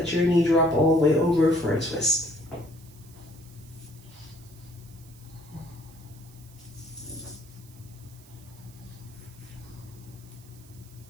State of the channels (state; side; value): noise; right; hiss, 24 dB below the sound